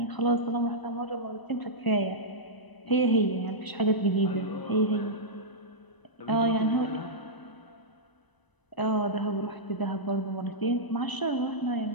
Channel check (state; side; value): late; right; 1.0 ms